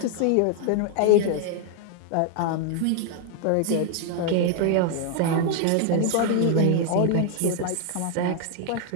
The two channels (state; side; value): different; both; correlation 0.00